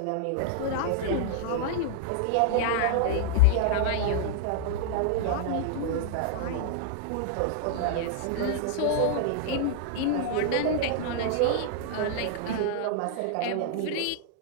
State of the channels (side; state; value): both; different; correlation -0.01